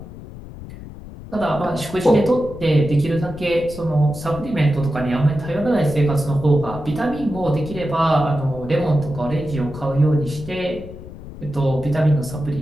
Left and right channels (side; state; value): left; noise; rumble, 14 dB below the sound